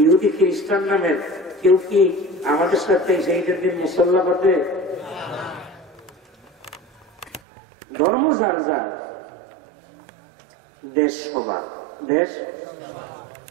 ইহুদি খ্রিস্টান নামের কেউ কি আমাদের সাথে সেইটার দিন মুসল্লা পাতে? ধর্ম যার যার, দেশ সবার। দেশ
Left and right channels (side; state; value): left; drops out; at 7.4 s